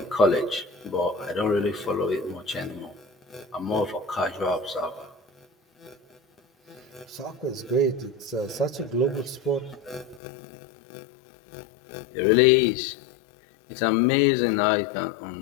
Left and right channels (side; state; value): right; drops out; at 10.2 s